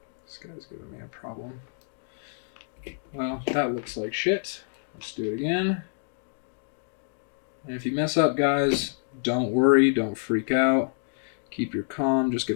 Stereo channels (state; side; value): silent; right; digital silence